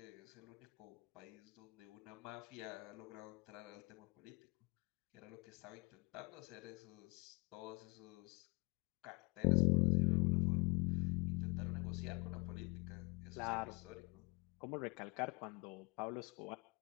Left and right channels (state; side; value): quieter; right; 26.6 dB